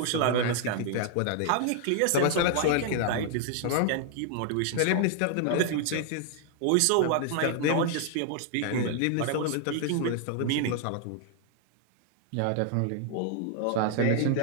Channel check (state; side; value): different; both; correlation 0.00